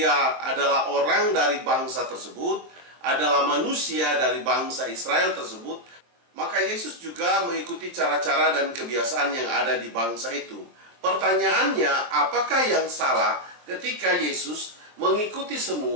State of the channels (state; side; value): late; left; 23 ms